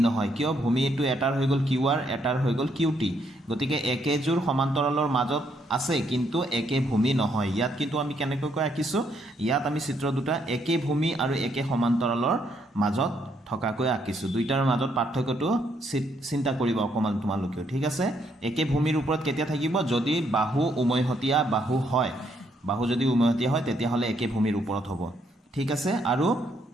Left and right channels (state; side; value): normal; both; correlation 0.72